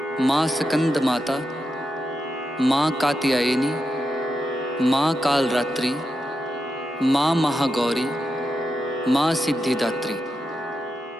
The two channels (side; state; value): both; normal; correlation 0.87